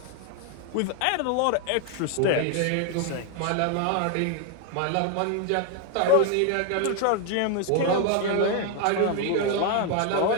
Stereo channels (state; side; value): different; both; correlation 0.01